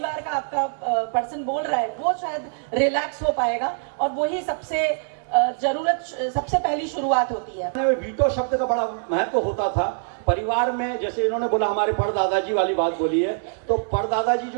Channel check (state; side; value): silent; left; digital silence